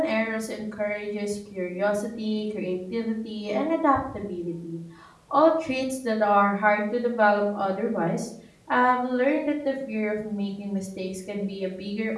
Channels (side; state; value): both; identical; correlation 1.00